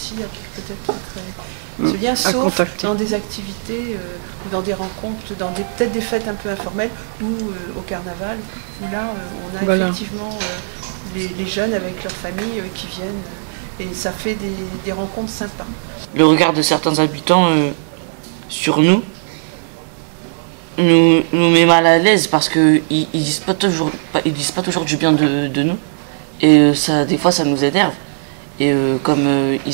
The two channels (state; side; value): silent; left; digital silence